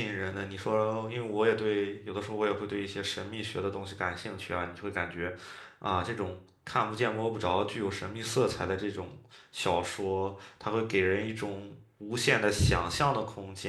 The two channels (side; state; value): both; identical; correlation 1.00